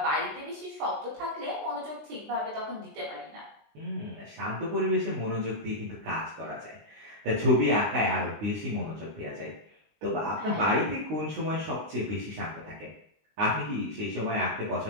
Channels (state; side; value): late; left; 19 ms